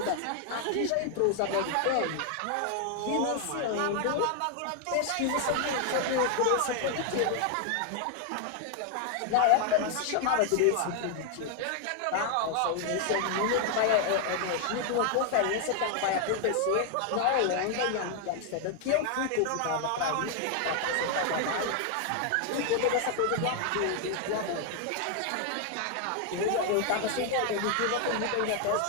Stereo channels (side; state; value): both; different; correlation 0.00